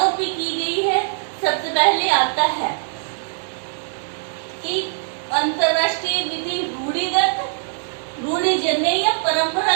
पे की गई है, सबसे पहले आता है कि अंतरराष्ट्रीय विधि रूढ़िगत, रूढ़िजन्य या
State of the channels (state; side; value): silent; left; digital silence